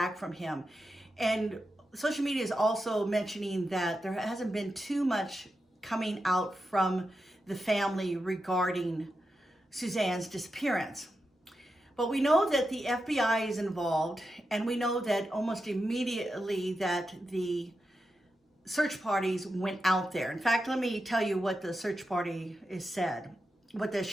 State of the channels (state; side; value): normal; both; correlation 0.88